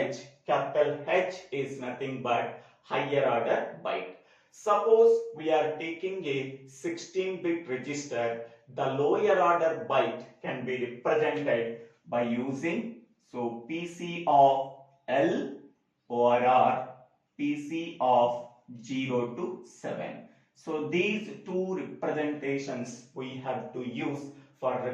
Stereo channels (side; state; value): both; identical; correlation 1.00